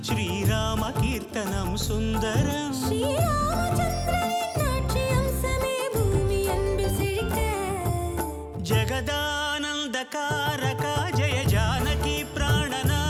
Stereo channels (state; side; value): identical; both; correlation 1.00